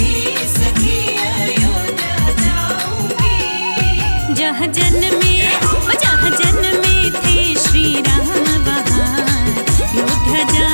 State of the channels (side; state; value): both; inverted; correlation -1.00